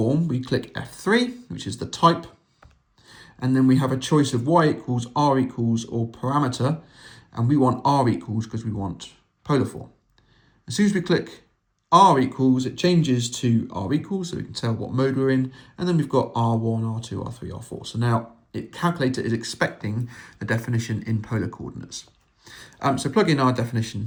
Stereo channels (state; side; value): identical; both; correlation 1.00